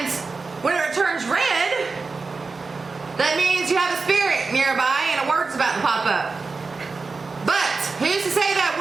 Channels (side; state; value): left; quieter; 4.2 dB